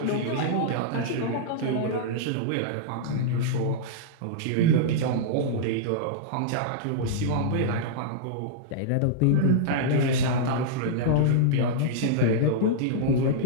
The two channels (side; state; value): both; different; correlation -0.02